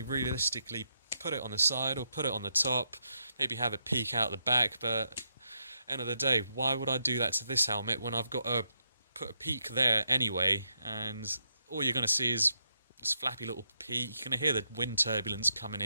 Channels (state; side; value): inverted; both; correlation -0.81